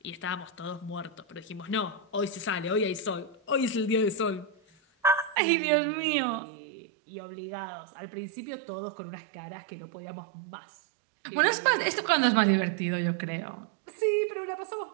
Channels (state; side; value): drops out; left; at 5.4 s